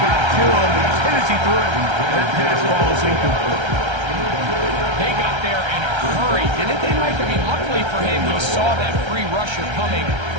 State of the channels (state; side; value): late; left; 1.3 ms